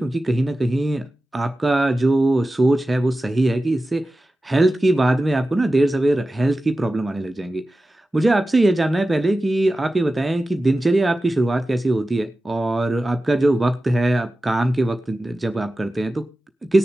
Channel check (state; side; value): normal; both; correlation 0.94